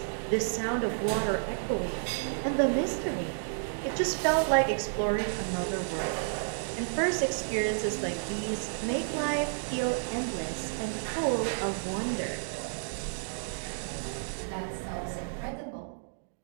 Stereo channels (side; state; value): left; silent; digital silence